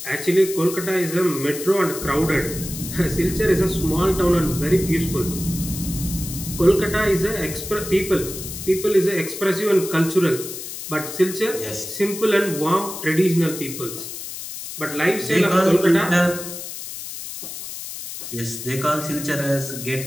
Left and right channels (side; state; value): left; noise; hiss, 9 dB below the sound